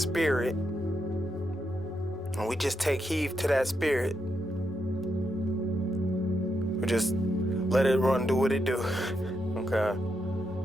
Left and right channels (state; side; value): normal; both; correlation 0.82